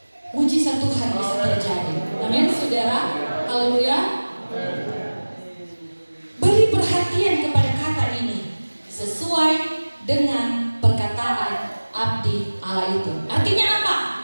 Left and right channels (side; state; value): both; inverted; correlation -1.00